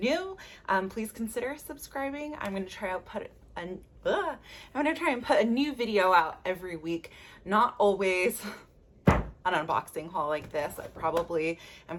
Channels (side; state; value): both; identical; correlation 1.00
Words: please consider subscribing. I'm going to try and put a new video out every week. Not always an unboxing haul like this. I probably am